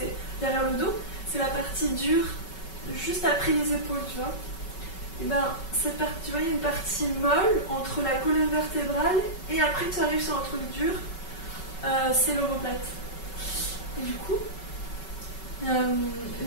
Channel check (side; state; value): right; late; 5.3 ms